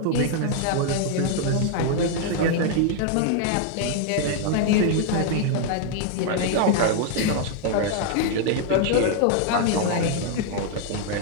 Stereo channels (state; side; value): different; both; correlation 0.00